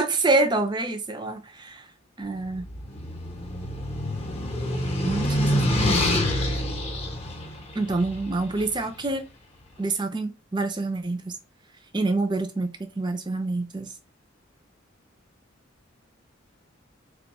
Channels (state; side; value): normal; both; correlation 0.59